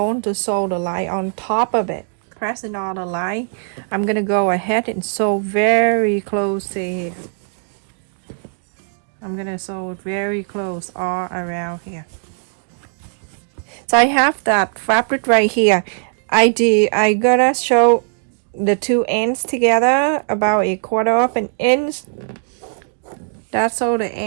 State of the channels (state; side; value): silent; left; digital silence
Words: to sew the line on top of it. Pressing on the line, I'm gonna go ahead and sew very close to here. I'm gonna sew it very close all around here. So I have that fabric right here. I gotta show the two ends together about 1/4 of an inch. That's all the